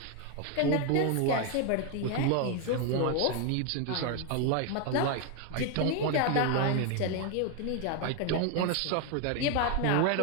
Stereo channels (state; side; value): different; both; correlation 0.01